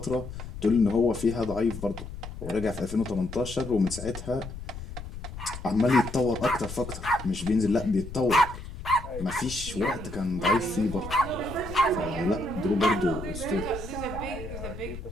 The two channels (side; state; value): left; noise; rumble, 11 dB below the sound